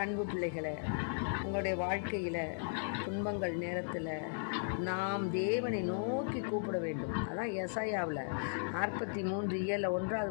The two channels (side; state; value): right; silent; digital silence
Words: அன்பு பிள்ளைகளை, உங்களுடைய வாழ்க்கையில் துன்பங்கள் நேரத்தில் நாம் தேவனை நோக்கி கூப்பிட வேண்டும். அதான் எசாயாவில் 43:1வது